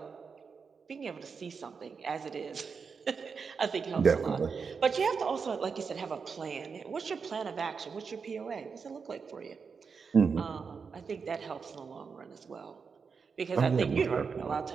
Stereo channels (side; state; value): left; quieter; 5.6 dB